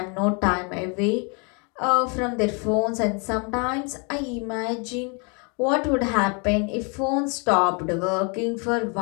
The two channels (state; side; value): quieter; right; 34.5 dB